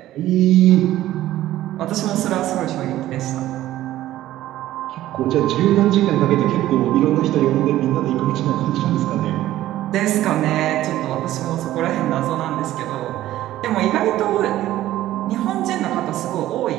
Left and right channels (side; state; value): left; quieter; 14.4 dB